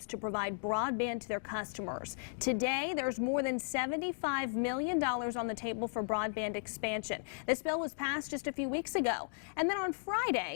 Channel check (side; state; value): right; silent; digital silence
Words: to provide broadband to their customers. Today, there's more than $75 million on the table for broadband expansion. This bill was passed just a few weeks ago. And then on